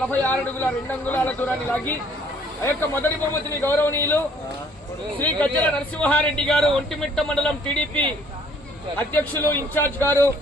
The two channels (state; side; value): normal; both; correlation 0.60